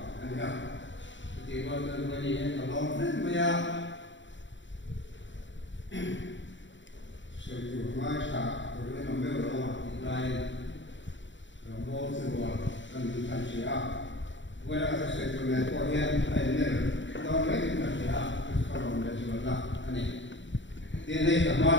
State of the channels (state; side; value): late; right; 0.54 ms